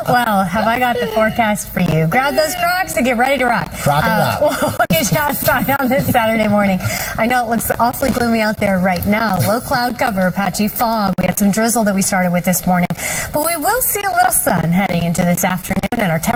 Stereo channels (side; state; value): both; identical; correlation 1.00